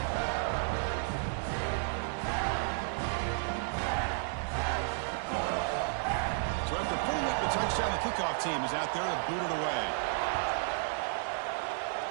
So after putting up the touchdown, the kickoff team is out there to boot it away.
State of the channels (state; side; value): silent; left; digital silence